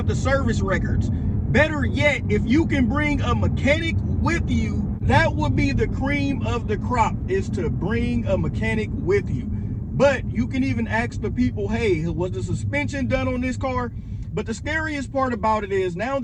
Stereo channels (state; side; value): identical; both; correlation 1.00